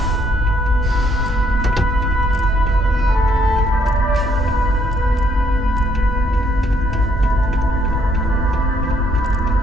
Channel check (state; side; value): normal; both; correlation 0.69